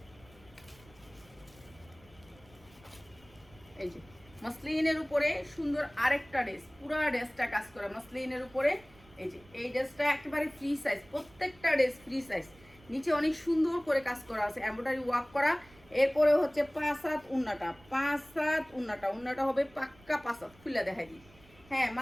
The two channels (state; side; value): noise; right; rumble, 26 dB below the sound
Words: এই যে মসলিনের উপরে সুন্দর আরেকটা ড্রেস, পুরো ড্রেসটা কাজ করা মসলিনের উপরে। এই যে এই ড্রেসটা একেবারে ফ্রি সাইজ, প্রত্যেকটা ড্রেস ফ্রি সাইজ। নিচে অনেক সুন্দর করে কাজ করা আছে, এমব্রয়ডারি ওয়ার্ক করা। এরপরে হচ্ছে 5 হাত উন্নাটা, 5 হাত উন্নাটা, উন্নাটা হবে পাক্কা 5 হাত, খুলে দেখাই দিই। হ্যাঁ,